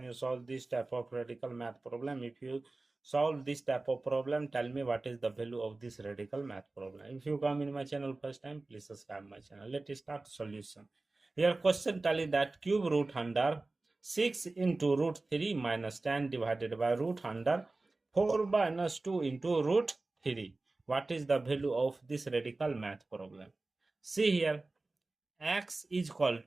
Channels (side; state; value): left; quieter; 3.3 dB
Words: you solve this type of radical math problem? If you solve this type of problem, tell me what is the value of this radical math problem. If you come in my channel first time, please subscribe my channel. Let us start solution. Here question tell you that cube root under 6 into root 3 minus 10 divided by root under 4 minus 2 into root 3. What is the value of this radical math problem? See here, x is equal